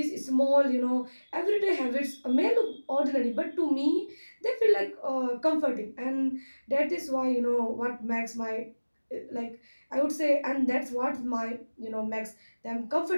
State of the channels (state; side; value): inverted; both; correlation -1.00